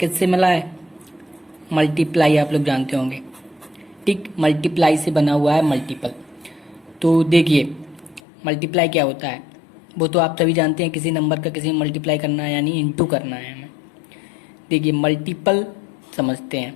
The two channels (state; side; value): drops out; right; at 8.2 s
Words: मिला है? मल्टीप्लाई, आप लोग जानते होंगे, ठीक। मल्टीप्लाई से बना हुआ है मल्टीपल। तो देखिए, मल्टीप्लाई क्या होता है वो तो आप सभी जानते हैं। किसी नंबर का किसी में मल्टीप्लाई करना है यानी इनटू करना है हमें। देखिए, मल्टीपल समझते